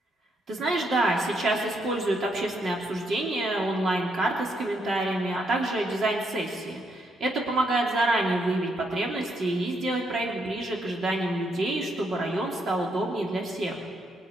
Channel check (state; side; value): normal; both; correlation 0.76